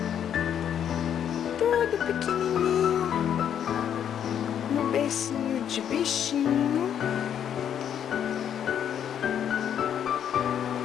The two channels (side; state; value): right; quieter; 9.2 dB